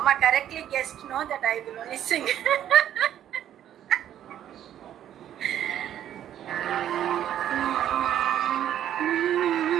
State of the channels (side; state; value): left; quieter; 10.9 dB